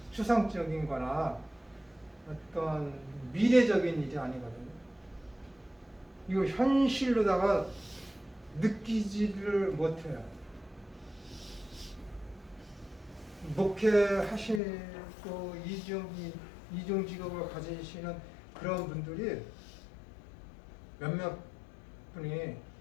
거나 어떤 미래적인 일이 아니거든요. 이거 현실로다가 느끼지를 못해요. 목회하시고 이중 직업을 가지시는 그런 분들이 몇몇 분이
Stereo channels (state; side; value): drops out; right; at 14.6 s